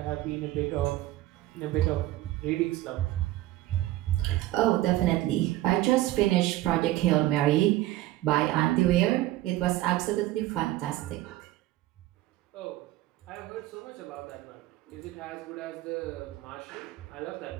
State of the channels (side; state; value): left; quieter; 15.9 dB